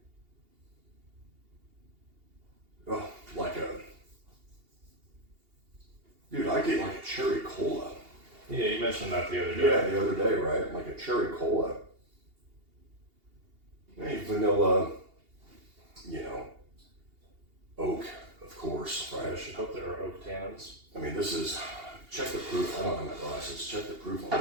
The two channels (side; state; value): left; late; 2.8 ms